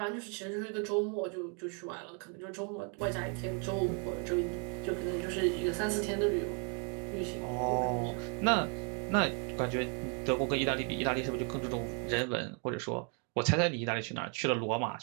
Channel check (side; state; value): left; quieter; 39.0 dB